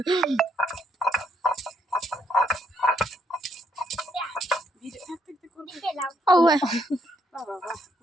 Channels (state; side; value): normal; both; correlation 0.73